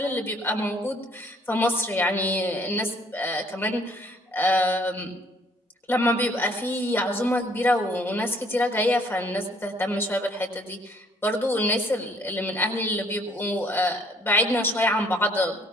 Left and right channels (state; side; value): normal; both; correlation 0.62